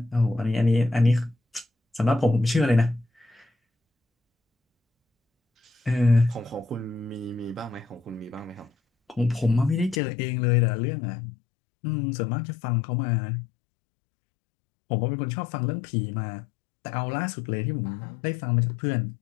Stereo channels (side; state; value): right; drops out; at 10.0 s